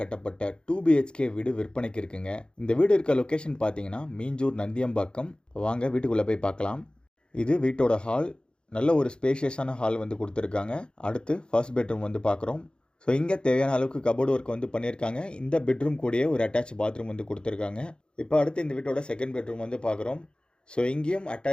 2 BHK வீடு விற்பனைக்கு இருக்குங்க. இந்த வீடு இருக்க லொக்கேஷன் பார்த்தீங்கன்னா மீஞ்சூர் நந்தியம்பாக்கம். வாங்க வீட்டுக்குள்ளே போய் பார்க்கலாம். இது வீட்டோட ஹால். நல்ல ஒரு ஸ்பேஷியஸான ஹால் வந்து கொடுத்துருக்காங்க. அடுத்து ஃபர்ஸ்ட் பெட்ரூம் வந்து பார்க்குறோம். ஸோ இங்கே தேவையான அளவுக்கு கபோர்டு ஒர்க் வந்து பண்ணியிருக்காங்க. இந்த பெட்ரூம் கூடயே ஒரு அட்டாச் பாத்ரூம் வந்து கொடுத்துருக்காங்க. இப்போ அடுத்து இந்த வீட்டோட செகண்ட் பெட்ரூம் வந்து பார்க்குறோம். ஸோ இங்கேயும்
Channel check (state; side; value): late; right; 0.051 ms